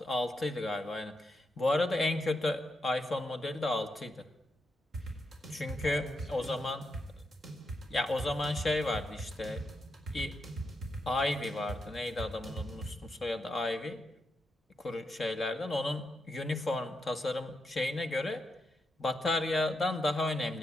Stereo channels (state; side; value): normal; both; correlation 0.84